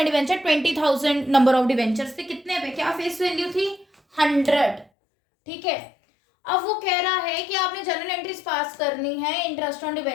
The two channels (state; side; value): drops out; right; at 4.9 s